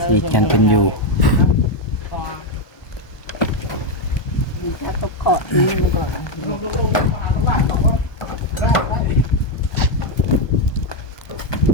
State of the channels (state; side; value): late; right; 1.2 ms